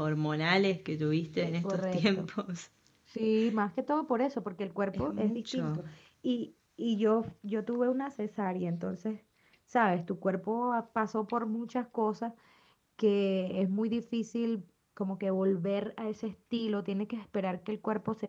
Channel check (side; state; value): both; identical; correlation 1.00